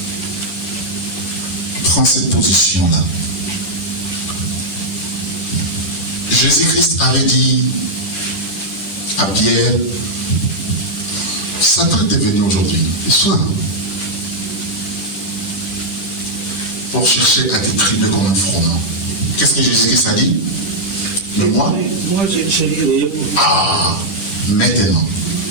Prends cette position-là. Jésus-Christ avait dit à Pierre, Satan était venu aujourd'hui, le soir, pour chercher à t'écrire comme un froment. Qu'est-ce que Jésus-Christ a dit? Mais moi, maintenant,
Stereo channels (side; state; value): right; late; 10 ms